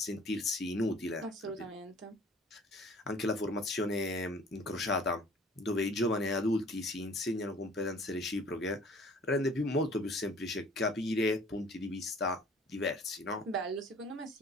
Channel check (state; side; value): normal; both; correlation 0.51